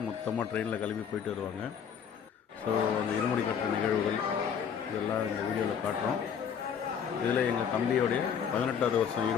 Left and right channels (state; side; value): quieter; right; 7.5 dB